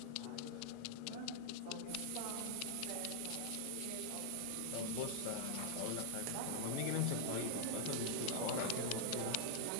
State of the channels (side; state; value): both; different; correlation -0.01